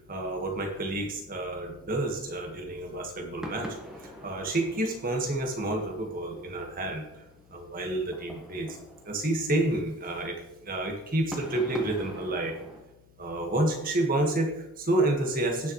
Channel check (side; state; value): left; noise; hum, 27 dB below the sound